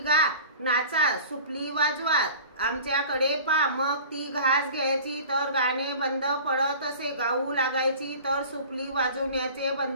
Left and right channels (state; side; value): inverted; both; correlation -0.41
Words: नाचा, सुपली वाजवा, आमच्याकडे पा। मग ती घास घ्यायची तर गाणे बंद पडत असे, गाऊ लागायची तर सुपली वाजवण्याचे